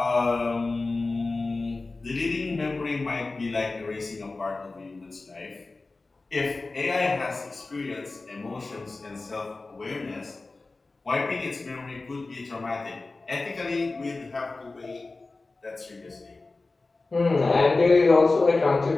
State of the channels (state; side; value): quieter; right; 3.5 dB